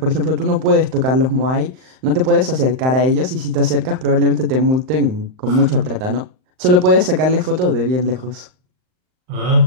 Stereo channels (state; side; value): late; left; 39 ms